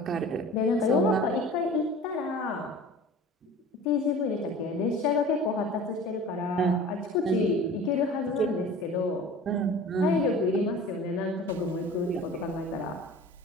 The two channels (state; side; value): normal; both; correlation 0.41